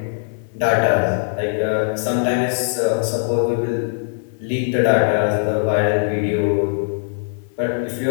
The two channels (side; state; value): right; silent; digital silence